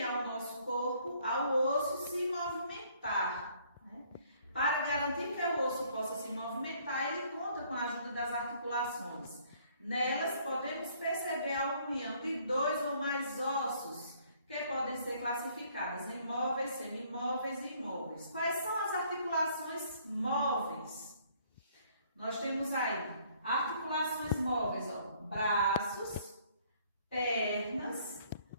ao nosso corpo, ao osso, se movimentar, né? Para garantir que o osso possa se movimentar, ele conta com a ajuda das articulações. Nelas podemos perceber a união de 2 ou mais ossos, que podem ser classificadas em móveis, semimóveis e imóveis. Quais são as articulações móveis? Nós temos aí articulações móveis, ó, braços, pernas,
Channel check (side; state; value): both; inverted; correlation -0.62